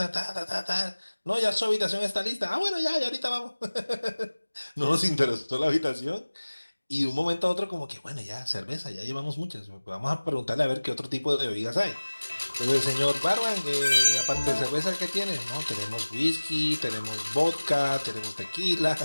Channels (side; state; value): both; inverted; correlation -1.00